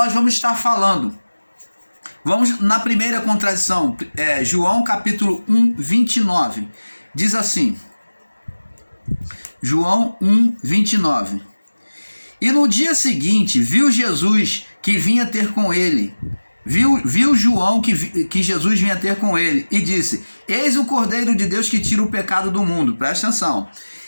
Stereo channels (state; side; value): inverted; both; correlation -1.00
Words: vamos estar falando. Vamos na primeira contradição, João capítulo 1, 29. Diz assim, João 1, 29. E no dia seguinte, viu Jesus que vinha ter com ele. Viu João que Jesus vinha ter com ele e disse, eis o Cordeiro de Deus que tira o pecado do mundo. Presta atenção.